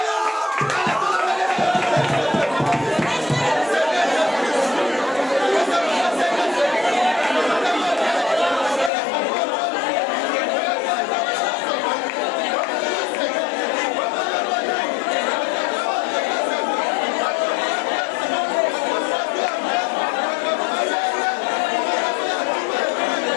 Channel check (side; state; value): right; drops out; at 8.9 s